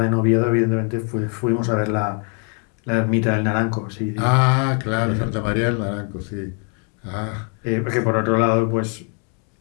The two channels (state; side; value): quieter; right; 39.7 dB